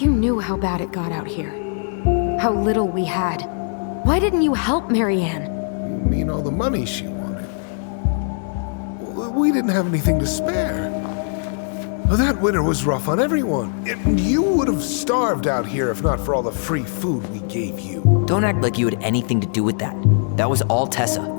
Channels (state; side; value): silent; right; 65 dB below the other